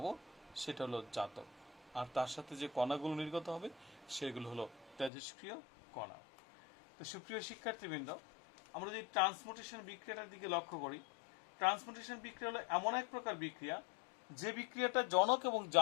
সেটা হলো জাতক, আর তার সাথে যে কণাগুলো নির্গত হবে সেগুলো হলো তেজস্ক্রিয় কণা। তো সুপ্রিয় শিক্ষার্থীবৃন্দ, আমরা যদি ট্রান্সমুটেশন বিক্রিয়াটার দিকে লক্ষ্য করি, ট্রান্সমুটেশন বিক্রিয়া হলো এমন এক প্রকার বিক্রিয়া যে বিক্রিয়াটা জনক এবং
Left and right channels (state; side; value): drops out; right; at 5.1 s